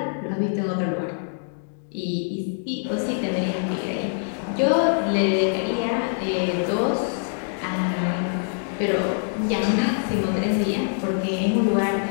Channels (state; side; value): silent; right; digital silence